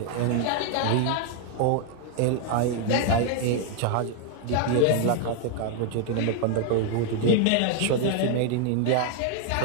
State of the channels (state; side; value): different; both; correlation 0.00